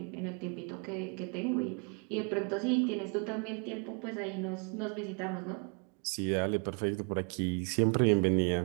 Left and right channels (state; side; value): quieter; left; 37.2 dB